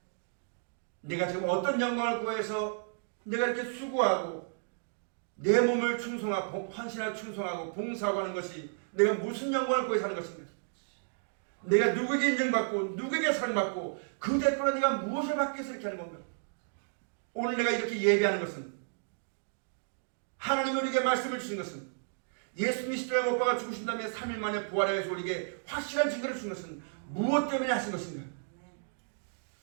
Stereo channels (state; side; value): silent; left; digital silence